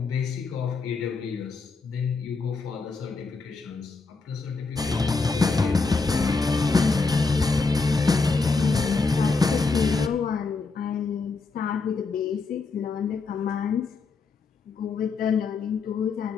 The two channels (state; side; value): quieter; right; 4.2 dB